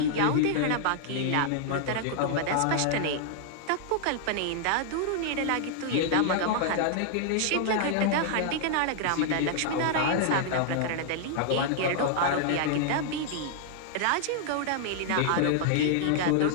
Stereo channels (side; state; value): both; different; correlation -0.01